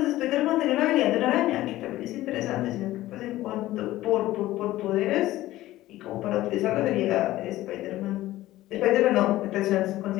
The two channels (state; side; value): quieter; right; 15.9 dB